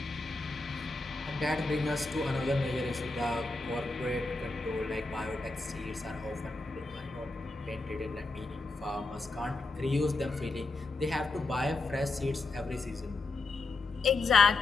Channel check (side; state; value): right; quieter; 3.3 dB